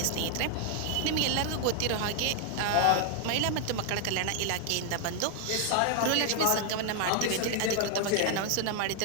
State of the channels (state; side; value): different; both; correlation 0.00